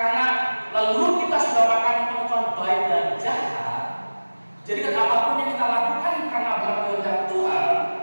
lalu kita sudah makan pohon baik dan jahat, jadi kan apapun yang kita lakukan karena berkehendak Tuhan,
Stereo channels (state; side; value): inverted; both; correlation -1.00